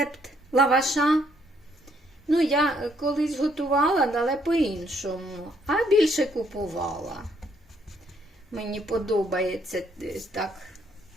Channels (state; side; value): normal; both; correlation 0.69